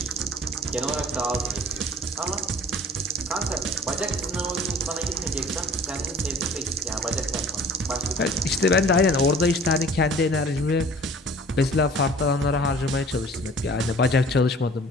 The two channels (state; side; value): normal; both; correlation 0.48